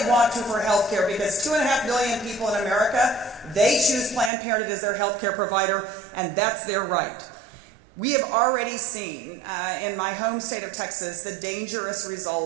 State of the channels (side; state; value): left; drops out; at 4.3 s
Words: want to for healthcare, because 2.5 million people in America, they choose Planned Parenthood as their healthcare provider, and that's their right. We have already seen in my home state of Texas the dangerous